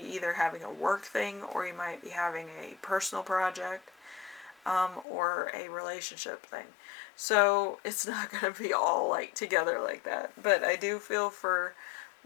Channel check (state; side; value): drops out; right; at 5.1 s